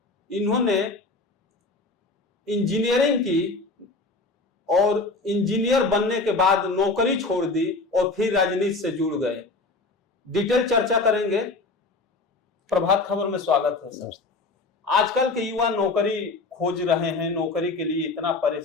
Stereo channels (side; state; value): right; quieter; 3.5 dB